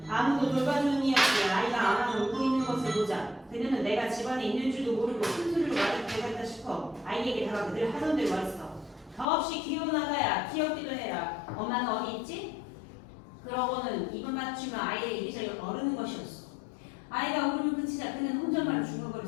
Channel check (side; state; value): right; drops out; at 9.2 s